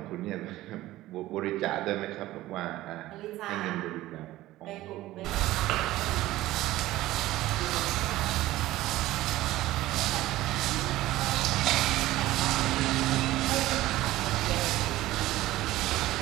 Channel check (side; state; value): left; quieter; 16.3 dB